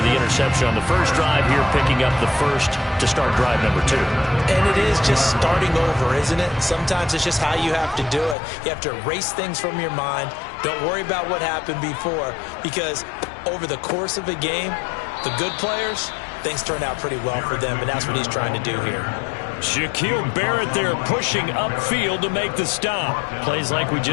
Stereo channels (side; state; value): right; drops out; at 8.3 s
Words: the interception on the first drive here, picking up the first to start drive number 2. And it is just starting over, isn't it? Sometimes it's just how you have to do it. You have to erase things from your mind. Don't worry about what happened before, because over the course of a game, the good players, things turn out pretty well for them, and that's what he's trying to do here. Shaquille Barrett there pushing upfield to make the stop. Plays like we